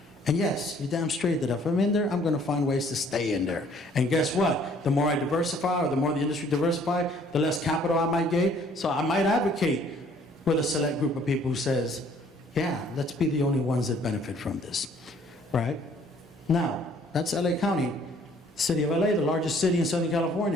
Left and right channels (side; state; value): both; normal; correlation 0.59